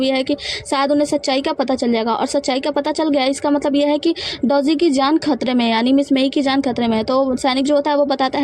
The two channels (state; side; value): identical; both; correlation 1.00